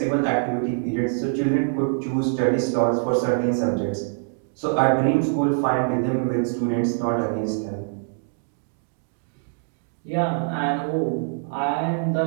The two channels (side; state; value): left; silent; digital silence